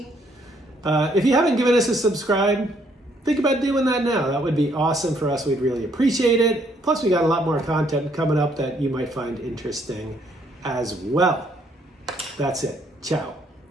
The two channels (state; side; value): normal; both; correlation 0.68